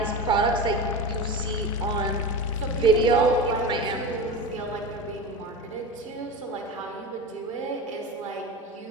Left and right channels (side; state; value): both; normal; correlation 0.26